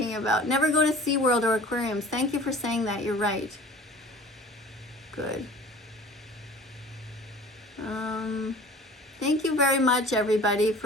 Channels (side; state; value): both; normal; correlation 0.44